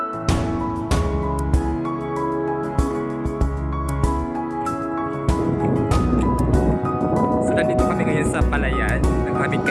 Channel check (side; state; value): both; identical; correlation 1.00